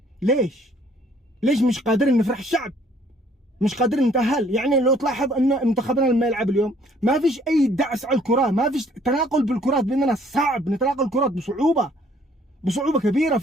ليش مش قادرين نفرح الشعب؟ مش قادرين نتأهل. يعني لو تلاحظ ان منتخبنا لما يلعب اليوم ما فيش اي دعس على الكرة، ما فيش تناقل بالكرات، بيننا صعب نتناقل الكرات بصعوبة كبيرة.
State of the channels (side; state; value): both; normal; correlation 0.61